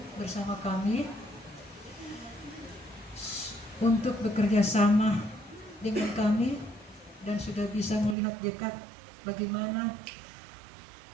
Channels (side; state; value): left; drops out; at 8.2 s